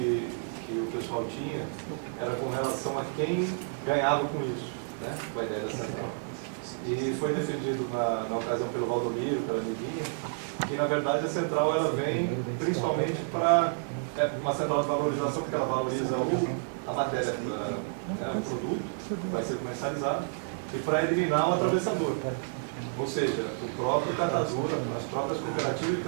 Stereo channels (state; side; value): silent; left; digital silence